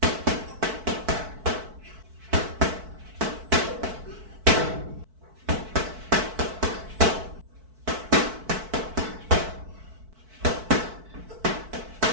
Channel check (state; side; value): late; left; 4.6 ms